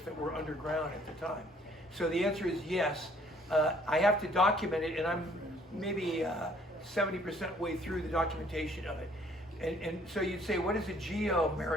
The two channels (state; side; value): normal; both; correlation 0.61